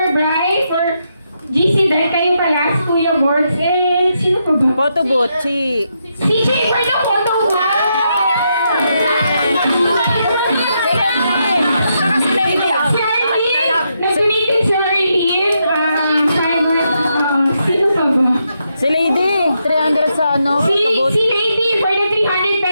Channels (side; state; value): both; inverted; correlation -0.81